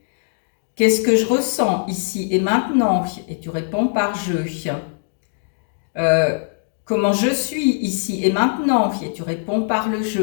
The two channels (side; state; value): right; silent; 65 dB below the other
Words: Qu'est-ce que je ressens ici et maintenant? Et tu réponds par je. Comment je suis ici et maintenant? Et tu réponds par le